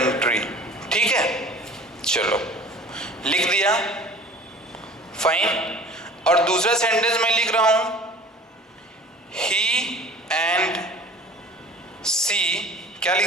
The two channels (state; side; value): normal; both; correlation 0.44